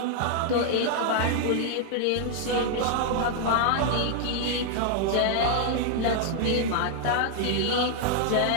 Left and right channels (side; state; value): both; different; correlation 0.00